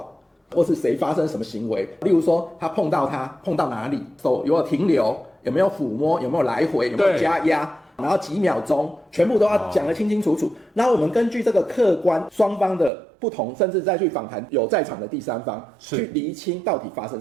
或是誰發生什麼行為。例如說，他碰到哪裡，手有沒有停留，有沒有撫摸，有沒有來回，有沒有加壓。然後幾秒鐘，全部都要講得清清楚楚。然後我們根據這個客觀雙方的不同，甚至再去訪談有在場的第三方，去釐清到底發生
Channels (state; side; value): drops out; left; at 12.9 s